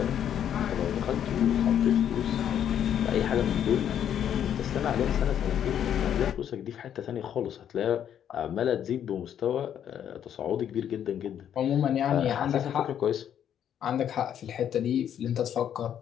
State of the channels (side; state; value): right; quieter; 9.6 dB